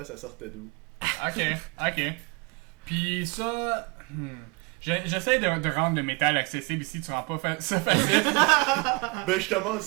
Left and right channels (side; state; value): left; quieter; 28.7 dB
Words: ça sortait d'où. Ok. Puis ça... J'essaie de rendre le métal accessible ici, tu rends pas ça facile. Ben je